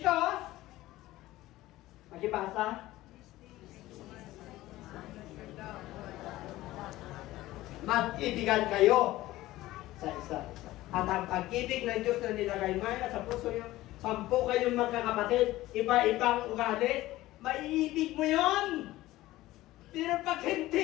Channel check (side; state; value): right; quieter; 16.8 dB